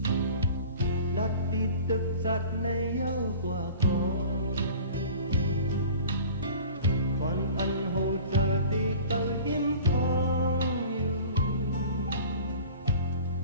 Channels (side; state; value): both; inverted; correlation -0.43